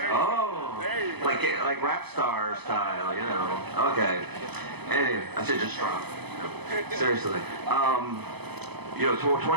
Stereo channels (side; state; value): left; late; 0.98 ms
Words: Oh, like rap star style, you know. Okay. Anyway, I should just drop. Seriously. You know,